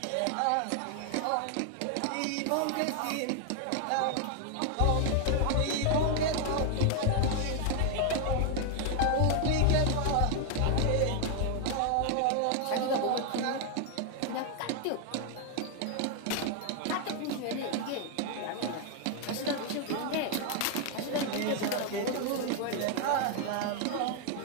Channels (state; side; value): different; both; correlation 0.00